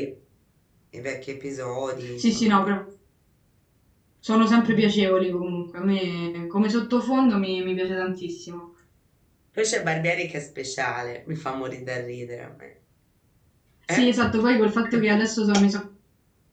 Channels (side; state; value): both; identical; correlation 1.00